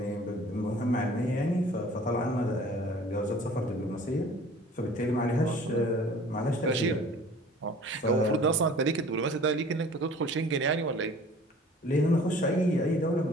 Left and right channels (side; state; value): both; normal; correlation 0.48